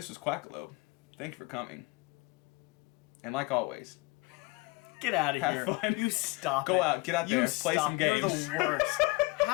was Quackalope. Thank you for coming. And like always, Get out of here. have fun. You stop Go it. out, get out there, play some games. You're the worst.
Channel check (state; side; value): quieter; right; 24.5 dB